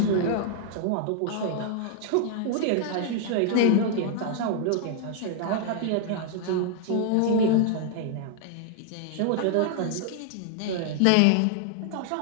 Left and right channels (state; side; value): different; both; correlation 0.00